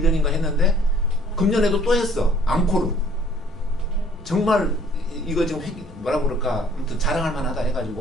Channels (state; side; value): normal; both; correlation 0.57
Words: 했는데 금년에도 또 했어. 앙코르. 정말 이거 지금 뭐라고 그럴까, 아무튼 자랑할 만하다